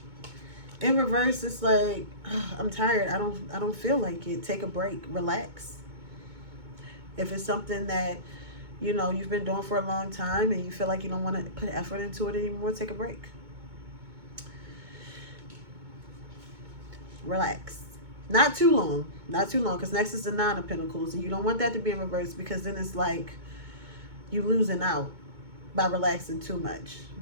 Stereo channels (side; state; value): left; late; 2.2 ms